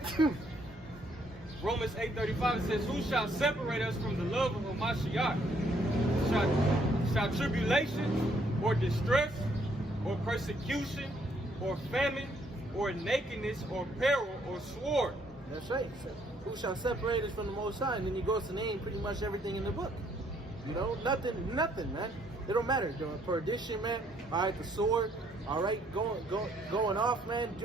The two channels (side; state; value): both; normal; correlation 0.68